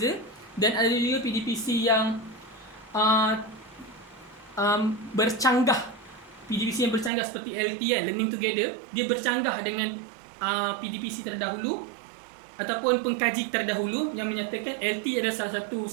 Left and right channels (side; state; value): left; drops out; at 7.1 s